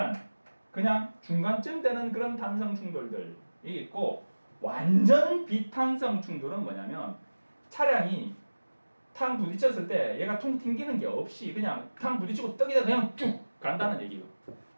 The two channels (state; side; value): inverted; both; correlation -1.00